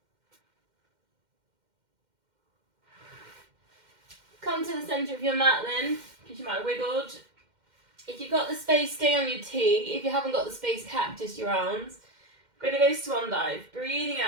Come to the centre of your mat then, because you might have wiggled. If you've got the space, stay on your T. If you haven't got the space, cactus your arms. We're going to go swan dive. Breathing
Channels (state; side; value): late; left; 2.1 ms